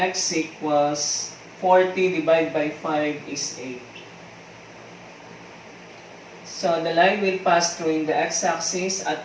equals 40 divided by 5 is 8. So the line will pass through in the x-axis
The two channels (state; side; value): identical; both; correlation 1.00